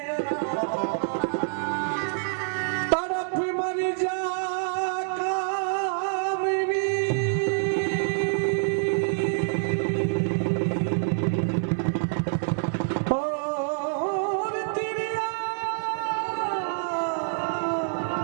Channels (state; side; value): silent; left; digital silence